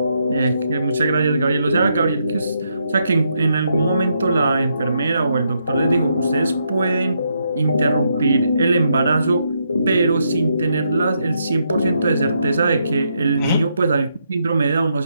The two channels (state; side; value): inverted; both; correlation -0.78